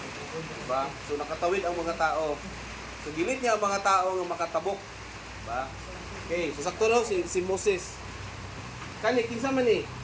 Diba? So nakatawid ang mga tao. So gilid niya ang mga tao nga makatabok. Diba? Okay, so sakto no si Moses. Kani, kinsa man ni?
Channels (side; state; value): both; identical; correlation 1.00